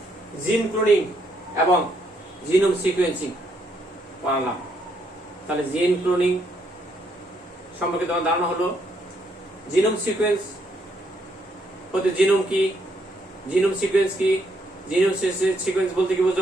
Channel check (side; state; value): both; normal; correlation 0.73